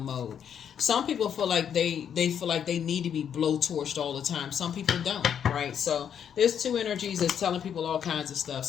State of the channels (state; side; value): quieter; right; 8.5 dB